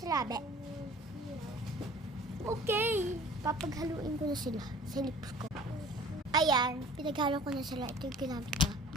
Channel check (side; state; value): both; normal; correlation 0.46